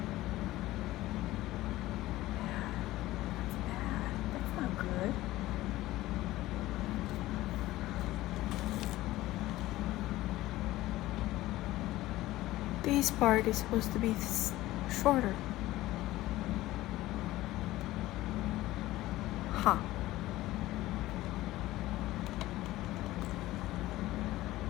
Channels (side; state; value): right; quieter; 16.7 dB